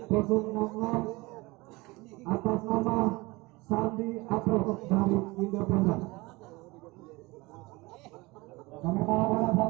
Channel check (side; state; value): left; quieter; 23.1 dB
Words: 060 atas nama Sandi Apro dari Independen. Kami mohon